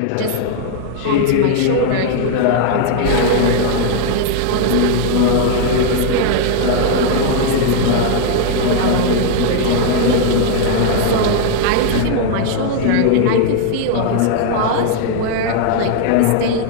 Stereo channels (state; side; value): different; both; correlation 0.00